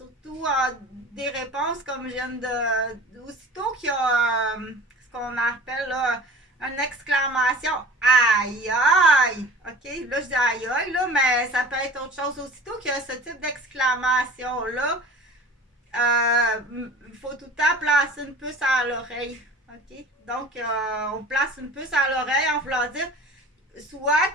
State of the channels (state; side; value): normal; both; correlation 0.42